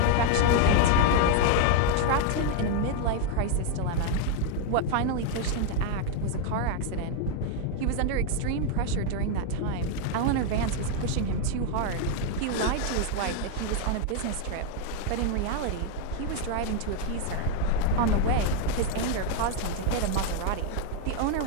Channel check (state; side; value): different; both; correlation 0.00